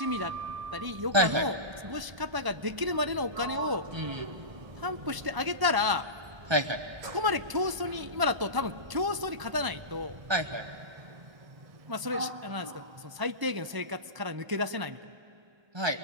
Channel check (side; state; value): left; late; 1.0 ms